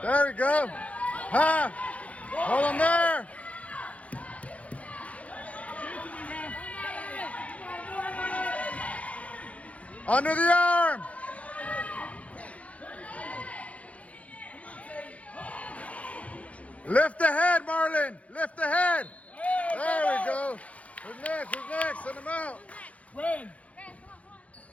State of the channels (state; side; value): late; right; 0.066 ms